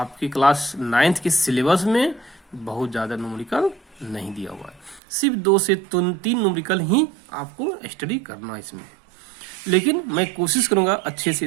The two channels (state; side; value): drops out; left; at 5.0 s